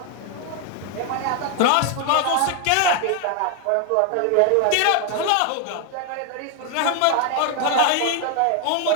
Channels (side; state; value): both; different; correlation 0.01